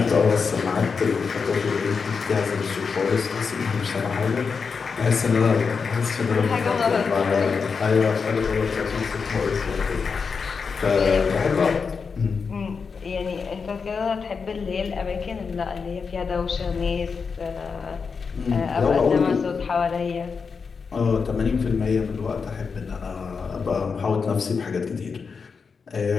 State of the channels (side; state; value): right; quieter; 5.4 dB